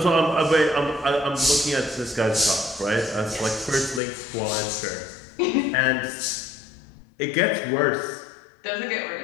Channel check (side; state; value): right; drops out; at 4.0 s